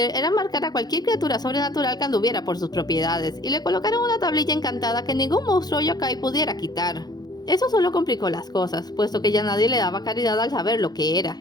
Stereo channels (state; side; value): late; right; 0.19 ms